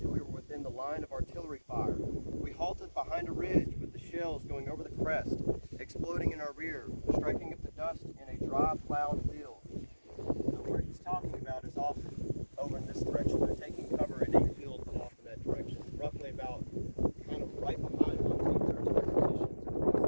we were within the line of artillery fire. We halted behind a ridge with the shells going over the crest, exploding in our rear, striking up the dust in a dry plowed field." So where he's talking about is off over in this direction. They're taking cover in a field off in that direction, roughly about kind of right behind Lumstein's artillery positions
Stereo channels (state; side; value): inverted; both; correlation -1.00